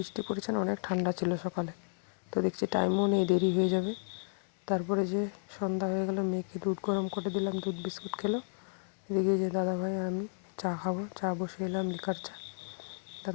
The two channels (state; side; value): silent; right; 56 dB below the other